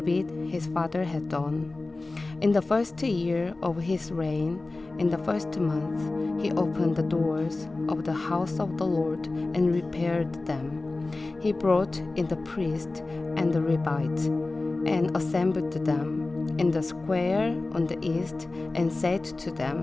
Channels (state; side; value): quieter; right; 3.2 dB